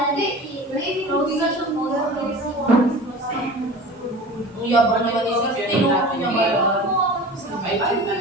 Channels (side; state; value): both; normal; correlation 0.37